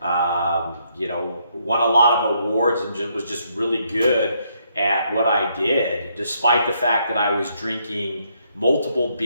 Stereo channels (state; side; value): inverted; both; correlation -0.73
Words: a lot of awards and was just really good at what I did, despite the fact that I was drinking multiple